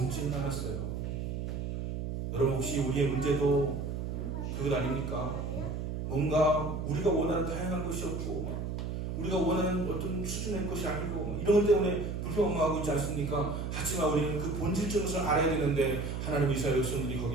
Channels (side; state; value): right; noise; hum, 4 dB below the sound